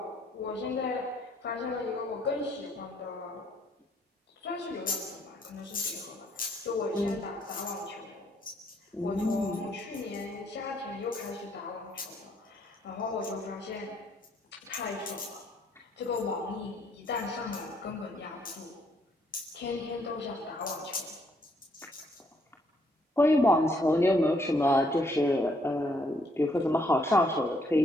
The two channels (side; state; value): both; normal; correlation 0.69